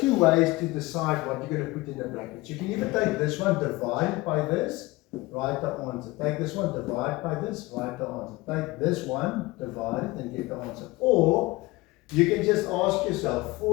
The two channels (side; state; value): right; quieter; 21.2 dB